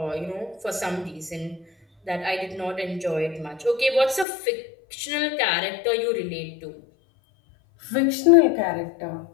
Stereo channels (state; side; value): drops out; right; at 4.2 s